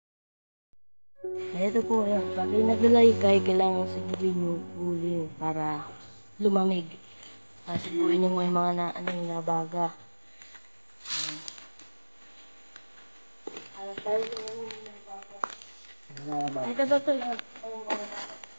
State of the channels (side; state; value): both; inverted; correlation -1.00